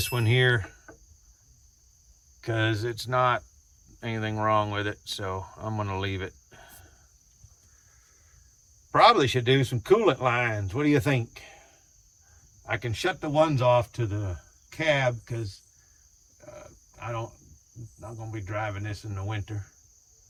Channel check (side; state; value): both; identical; correlation 1.00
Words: one here because it's not anything wrong with it, so I'm going to leave it. Probably should do some coolant lines. What do you think? I can shut the ones off to the cab because I'm not going to be driving this in the winter.